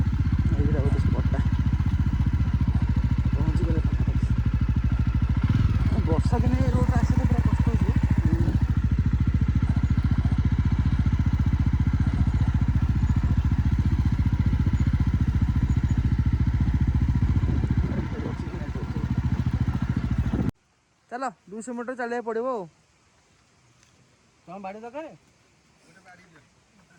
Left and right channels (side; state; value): both; identical; correlation 1.00